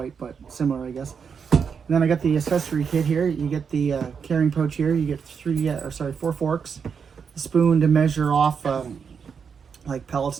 but similar, I guess. And then I got the accessory kit here. You get the carrying pouch here. You get four forks, a spoon to measure off like pellets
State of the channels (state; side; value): quieter; left; 6.4 dB